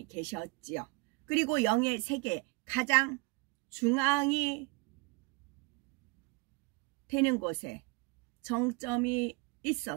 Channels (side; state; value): left; quieter; 27.5 dB